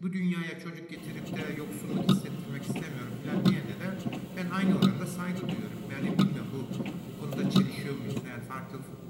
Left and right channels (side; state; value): both; identical; correlation 1.00